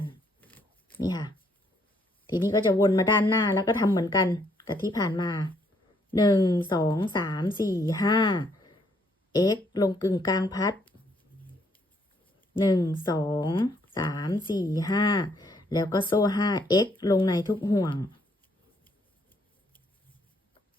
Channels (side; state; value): both; normal; correlation 0.70